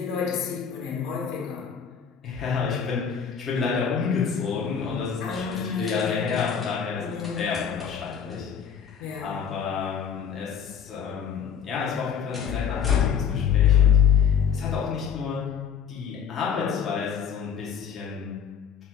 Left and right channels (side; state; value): right; quieter; 7.3 dB